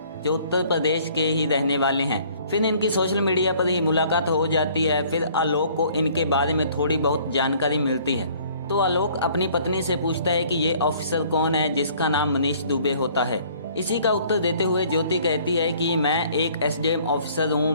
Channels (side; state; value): both; inverted; correlation -0.56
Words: जो उत्तर प्रदेश के ही रहने वाले हैं। फिर इनकी सोशल मीडिया पर ही मुलाकात हो जाती है। फिर आलोक को इनके बारे में थोड़ी बहुत जानकारी मिलती है तो आलोक अपनी पत्नी से पूछता है कि ये ऑफिसर कौन है जिसका नाम मनीष दुबे होता है। इसी का उत्तर देते हुए ज्योति कहती है कि मैं एक एसडीएम ऑफिसर हूँ,